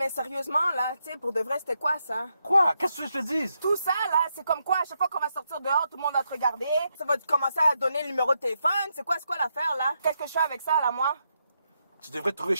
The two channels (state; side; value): inverted; both; correlation -0.81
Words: sérieusement, là, tu sais, pour de vrai, c'était quoi ça? Quoi? Qu'est-ce que je te dise? Tout ça, là, c'est comme quoi, à chaque fois qu'on va sortir dehors, tout le monde va te regarder, ça va te commencer à donner le numéro de téléphone, c'est quoi l'affaire, là? Qu'est-ce que je fais avec ça, là, moi? Tu devrais te trouver